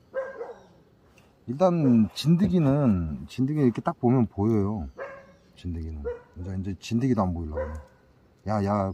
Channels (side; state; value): both; identical; correlation 1.00